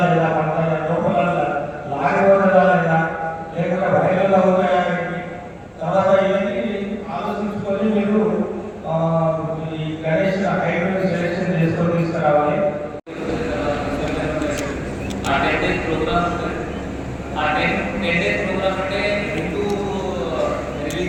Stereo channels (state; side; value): identical; both; correlation 1.00